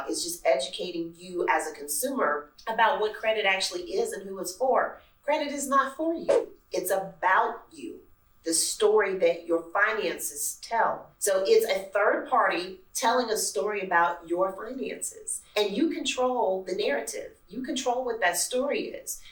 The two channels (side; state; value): both; identical; correlation 1.00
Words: is just educating you as a consumer about what credit actually is and who it's for. Credit is not for you. It's about you. The story that your finances tell. So it's a third party telling a story about your finances. And you control the narrative. You control what that story is.